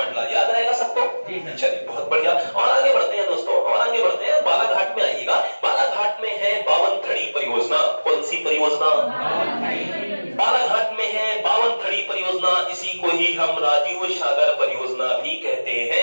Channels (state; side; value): inverted; both; correlation -1.00